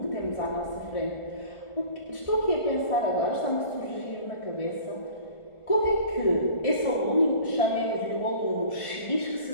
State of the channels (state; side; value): late; right; 1.4 ms